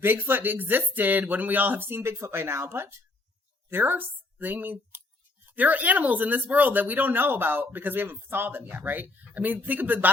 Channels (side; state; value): right; quieter; 3.1 dB